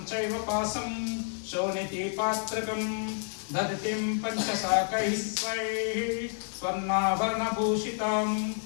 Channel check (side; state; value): right; silent; digital silence